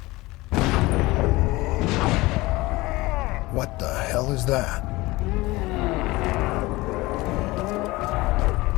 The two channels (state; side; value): quieter; right; 20.7 dB